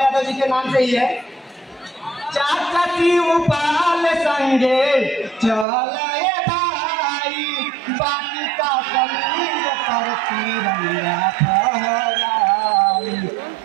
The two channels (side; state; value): left; drops out; at 5.7 s